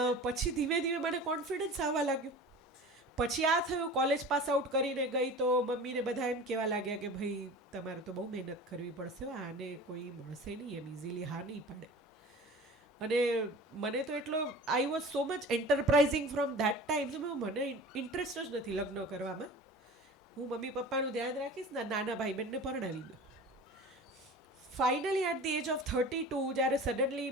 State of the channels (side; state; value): both; normal; correlation 0.38